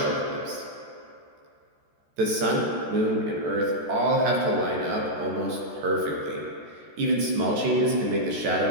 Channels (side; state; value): left; late; 14 ms